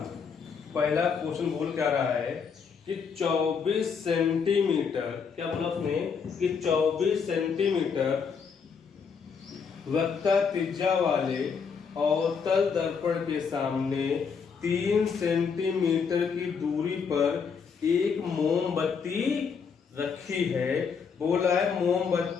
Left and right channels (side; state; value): right; quieter; 6.1 dB